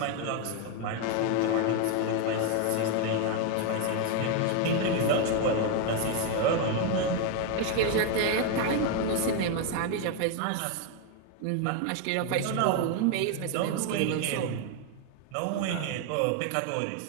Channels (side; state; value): both; different; correlation 0.01